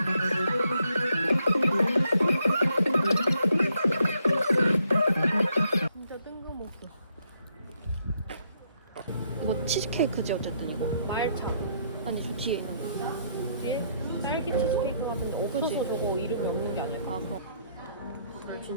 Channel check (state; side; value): inverted; both; correlation -0.72